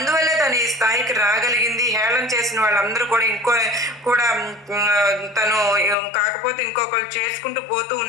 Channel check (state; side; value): drops out; right; at 6.0 s